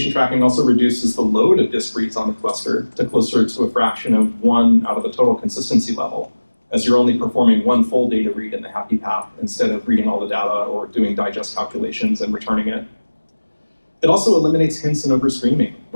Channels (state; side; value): inverted; both; correlation -1.00